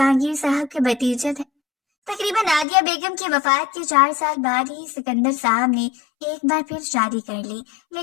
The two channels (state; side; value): drops out; right; at 2.7 s